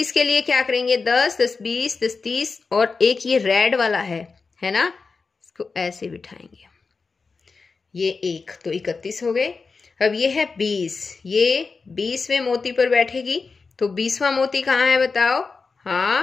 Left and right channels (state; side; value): quieter; right; 4.5 dB